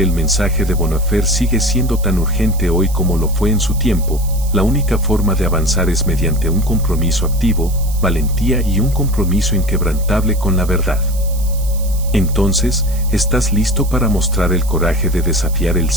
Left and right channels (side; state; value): right; noise; hiss, 15 dB below the sound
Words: el mensaje de Bonhoeffer sigue siendo tan urgente hoy como lo fue en su tiempo. La única forma de avanzar es mediante un compromiso activo, valentía y un compromiso inquebrantable con la verdad. Entonces, ¿estás listo para mostrar el coraje de desafiar el